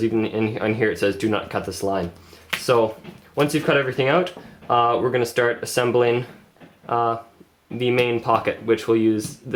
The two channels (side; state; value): both; identical; correlation 1.00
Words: even on here it says do not cut this line. So once you've cut everything out, we're going to start assembling the main pocket, which will use